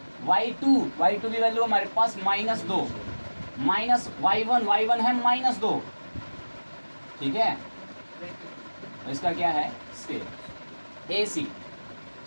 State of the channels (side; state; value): both; inverted; correlation -1.00